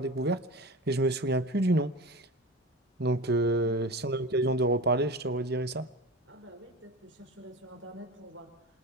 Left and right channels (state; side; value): normal; both; correlation 0.30